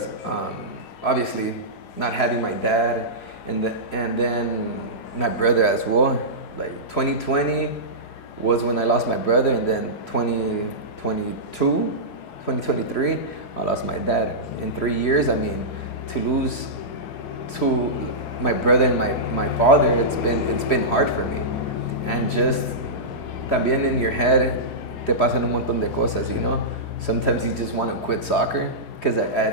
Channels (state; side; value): late; right; 4.8 ms